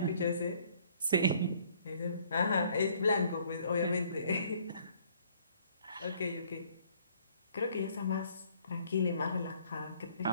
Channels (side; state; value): both; inverted; correlation -0.61